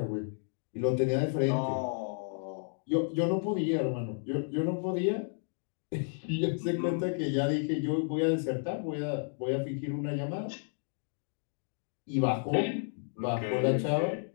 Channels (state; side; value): silent; right; digital silence